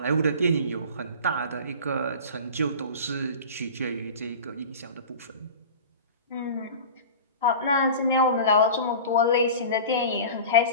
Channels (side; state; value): both; inverted; correlation -0.35